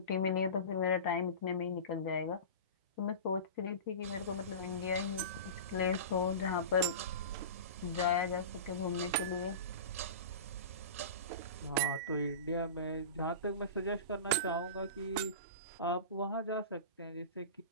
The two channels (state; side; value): inverted; both; correlation -0.30